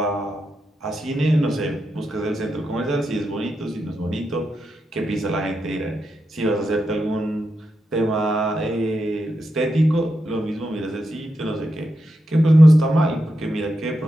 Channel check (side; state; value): both; normal; correlation 0.86